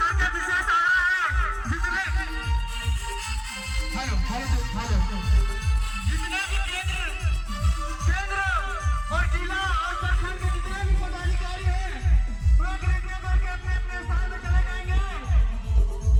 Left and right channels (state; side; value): identical; both; correlation 1.00